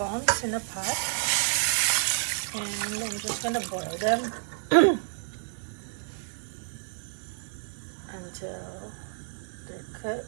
in a pot and I'm just gonna boil them until they're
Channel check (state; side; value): silent; left; digital silence